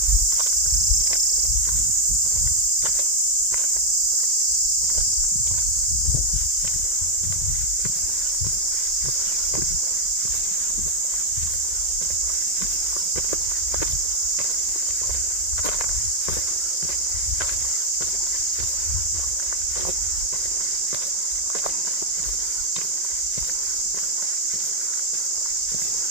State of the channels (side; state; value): left; late; 2.0 ms